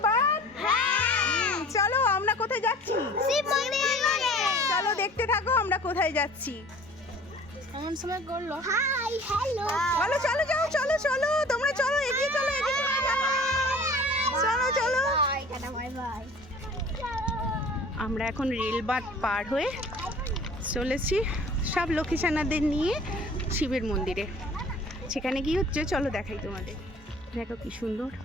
বাদ। চলো আমরা কোথায় যাচ্ছি? চলো দেখতে থাকো আমরা কোথায় যাচ্ছি। এমন সময় করলো। হাই হ্যালো চলো চলো যাও, চলো চলো তোমরা চলো, এগিয়ে চলো, এগিয়ে চলো, চলো চলো। Bye bye. আমরা এখন রেলবাত পার হয়ে চলেছি সব লক্ষ্মীছানাদের নিয়ে শিবের মন্দিরে। সেখানে কি হচ্ছে চলো দেখাই তোমাদের। দেখো কি সুন্দর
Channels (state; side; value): normal; both; correlation 0.47